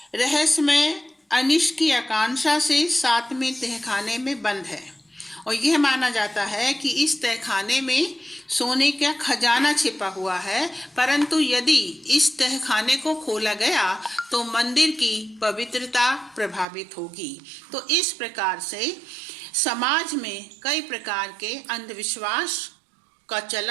रहस्यमय अनिष्ट की आकांक्षा से 7वें तहखाने में बंद है और यह माना जाता है कि इस तहखाने में सोने का खजाना छिपा हुआ है, परंतु यदि इस तहखाने को खोला गया तो मंदिर की पवित्रता प्रभावित होगी। तो इस प्रकार से समाज में कई प्रकार के अंधविश्वास का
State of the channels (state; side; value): drops out; left; at 16.7 s